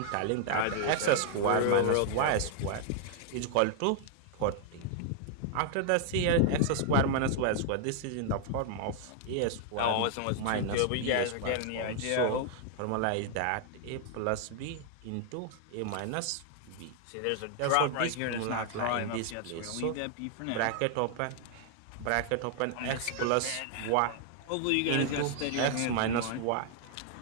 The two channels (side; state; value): both; different; correlation 0.00